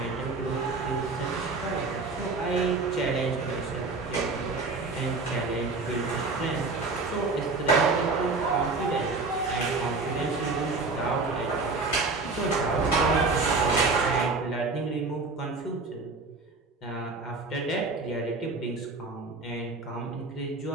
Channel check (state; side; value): quieter; left; 3.8 dB